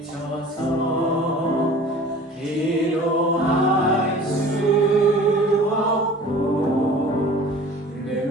기도할 수 없고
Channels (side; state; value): both; normal; correlation 0.44